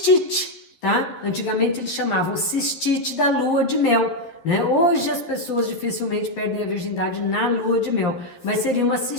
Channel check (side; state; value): right; late; 11 ms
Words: tá? Antigamente eles chamavam cistite da lua de mel, né? Hoje as pessoas dificilmente perdem a virgindade na lua de mel, mas seria uma